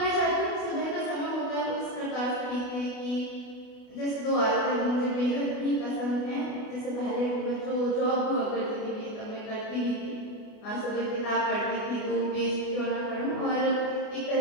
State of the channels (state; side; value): late; right; 29 ms